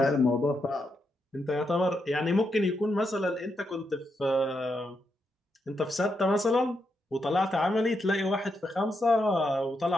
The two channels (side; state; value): both; normal; correlation 0.82